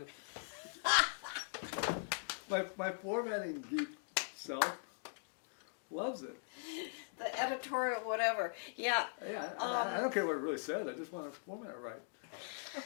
my formatting geek self loves it. The editorial, whatever. Yeah. Yeah, I don't care what it really says. I just want to format it right.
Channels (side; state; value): right; silent; digital silence